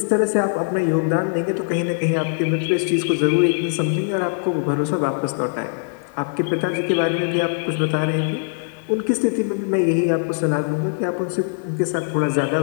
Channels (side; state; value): right; silent; digital silence